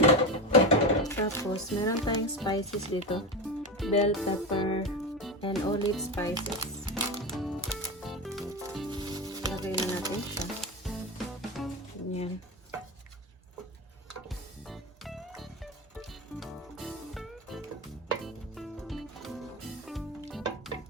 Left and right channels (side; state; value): both; normal; correlation 0.20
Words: Tapos, meron tayong spices dito. Bell pepper and olive spices. Lagay na natin siya. Yan.